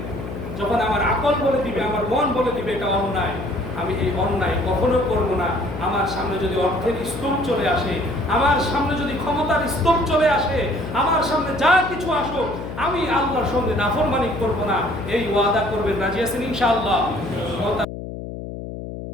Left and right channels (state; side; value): noise; left; hum, 9 dB below the sound